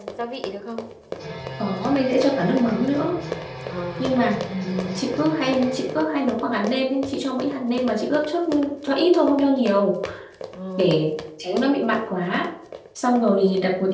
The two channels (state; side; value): identical; both; correlation 1.00